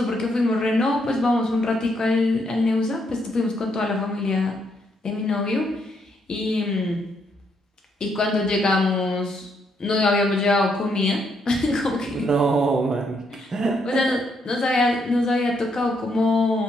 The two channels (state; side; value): normal; both; correlation 0.75